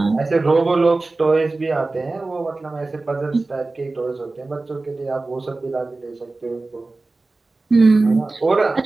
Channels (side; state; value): left; quieter; 3.3 dB